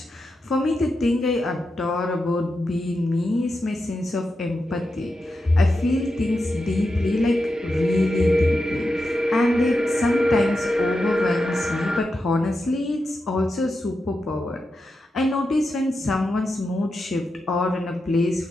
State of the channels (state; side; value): normal; both; correlation 0.88